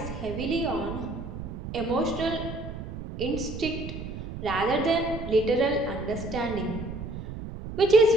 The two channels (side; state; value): right; noise; rumble, 9 dB below the sound